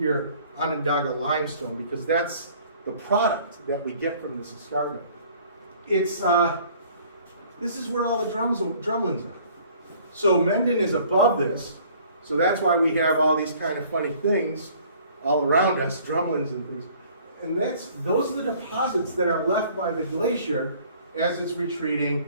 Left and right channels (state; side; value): inverted; both; correlation -0.54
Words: Onondaga limestone, because that's the product that we get from this escarpment. It's this is where all the drumlins are. So Mendon is above this, so that's why we have all these kind of funny things all around us, drumlins and things. And those are the deposits that are left by the glacier as it's